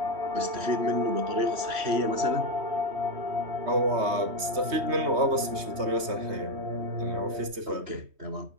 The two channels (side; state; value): left; late; 3.1 ms